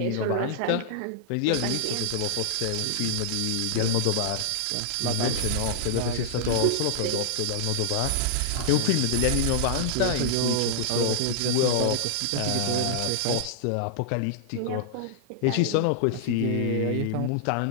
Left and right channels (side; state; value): both; different; correlation -0.01